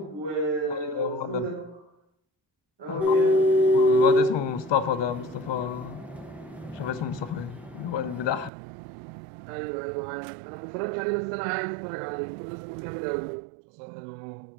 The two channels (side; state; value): left; drops out; at 8.5 s